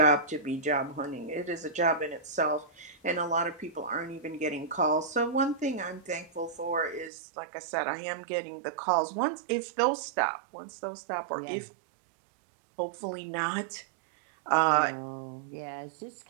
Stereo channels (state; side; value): drops out; left; at 7.1 s